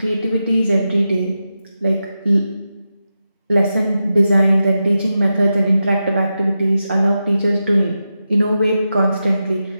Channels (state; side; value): inverted; both; correlation -0.90